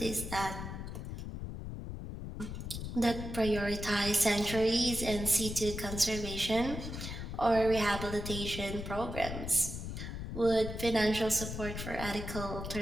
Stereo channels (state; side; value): noise; left; rumble, 7 dB below the sound